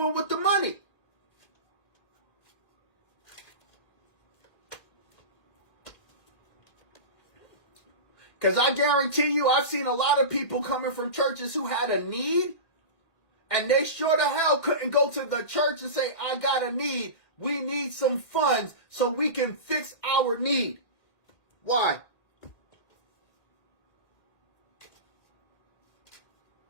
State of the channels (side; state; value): right; late; 1.8 ms